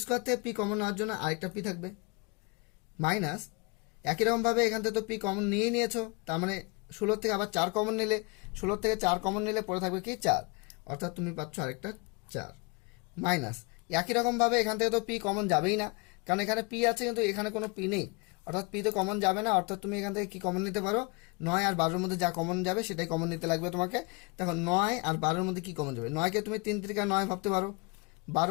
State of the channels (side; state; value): right; quieter; 29.6 dB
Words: স্কোয়ার থেকে পি কমন নেওয়ার জন্য আরেকটা পি থাকবে, মাইনাস একই রকমভাবে এখান থেকে তো পি কমন নিয়েই নিয়েছো, তার মানে 16 থেকে আবার 4 কমন নিলে, 16 থেকে 4 কমন নিলে পড়ে থাকবে কি 4, অর্থাৎ তুমি পাচ্ছ আরেকটা 4, মাইনাস একই রকমভাবে এখান থেকে তো পি কমন যাবেই না, কারণ এখানে পি আছে কিন্তু এখানে কোনো পি নেই, অর্থাৎ পি তো কমন যাবে না, অর্থাৎ তুমি এখান থেকে কি কমন নিতে পারো, 9 আর 12-এর মধ্যে যা কমন যাবে সেটাই কমন নিতে লাগবে তোমাকে। দেখো 9 আর 12-এর মধ্যে কি কমন যাবে, 9কে তুমি 3 3 9 ভাবতে পারো,